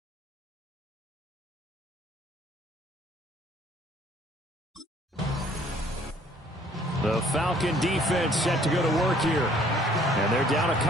The Falcon defense set to go to work here. And they're down a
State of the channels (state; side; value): normal; both; correlation 0.59